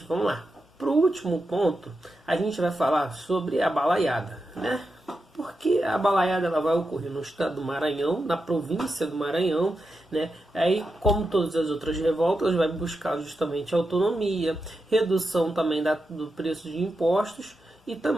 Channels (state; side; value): normal; both; correlation 0.88